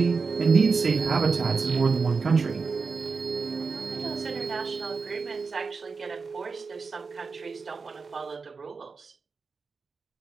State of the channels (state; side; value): quieter; left; 4.7 dB